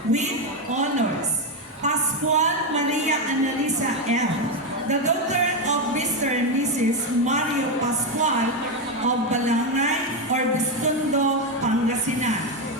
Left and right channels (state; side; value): normal; both; correlation 0.08